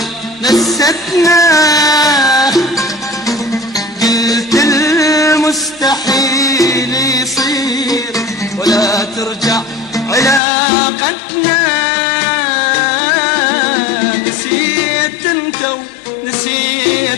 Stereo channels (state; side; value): drops out; right; at 10.4 s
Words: نستنا، قلت المستحيل يصير ولا ترجع علاقتنا. نسيت انت